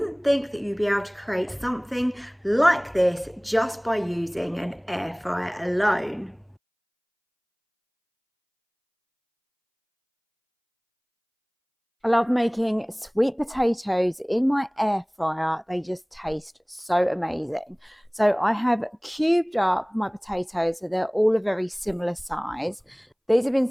think that you'd be able to create something like this just by using an air fryer alone. I love making sweet potatoes in my air fryer. They just taste so amazing. So I have cubed up my potatoes so they're all a very similar size. These have been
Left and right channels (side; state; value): both; identical; correlation 1.00